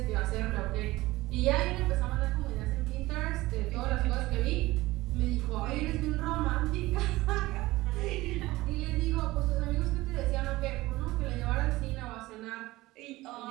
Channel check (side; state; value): left; quieter; 18.8 dB